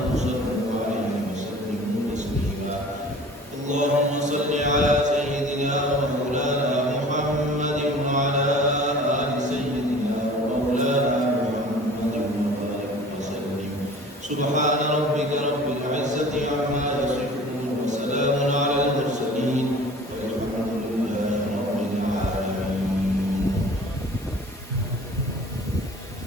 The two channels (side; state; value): both; normal; correlation 0.44